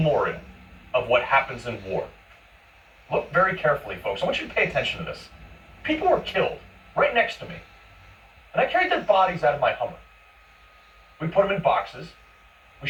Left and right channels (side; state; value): both; identical; correlation 1.00